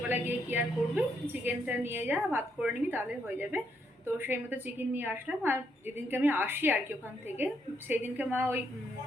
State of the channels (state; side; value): normal; both; correlation 0.75